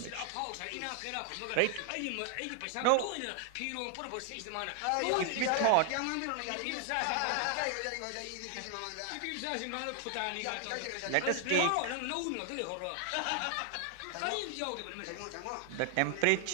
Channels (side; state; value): both; different; correlation 0.00